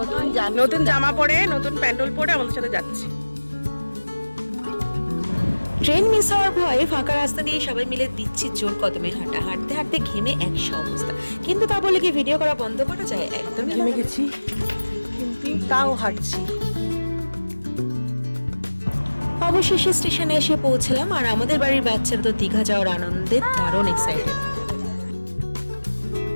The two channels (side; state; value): both; inverted; correlation -1.00